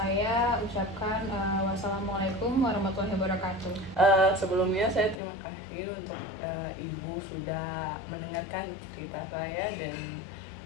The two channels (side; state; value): right; drops out; at 5.2 s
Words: ucapkan wassalamualaikum warahmatullahi wabarakatuh. Sebelumnya saya terima kasih untuk Ibu sudah mendengarkan cerita saya dan